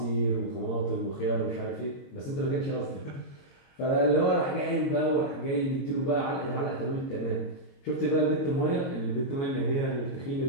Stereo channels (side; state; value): right; late; 22 ms